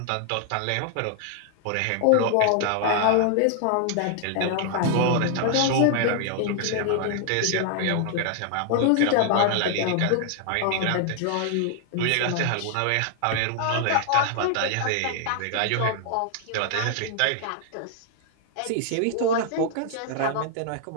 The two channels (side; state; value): both; different; correlation 0.00